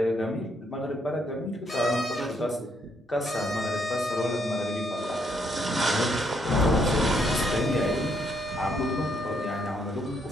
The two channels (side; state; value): both; normal; correlation 0.73